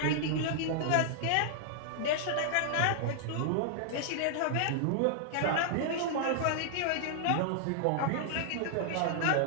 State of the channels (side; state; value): both; different; correlation -0.01